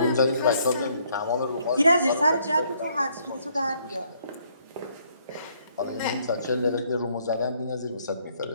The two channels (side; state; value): both; inverted; correlation -0.68